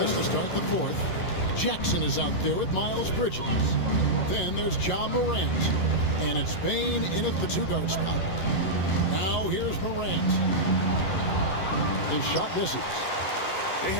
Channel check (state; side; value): late; right; 11 ms